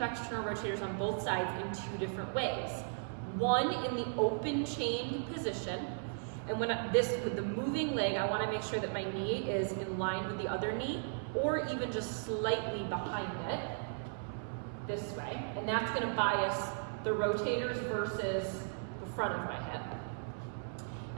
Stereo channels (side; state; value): left; silent; 54 dB below the other